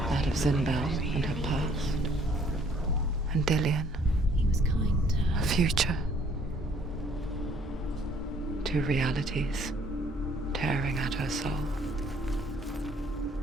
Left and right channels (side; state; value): both; normal; correlation 0.61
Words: That of Zinbel and her past, and Dillian, her future. Two realities tearing at her soul.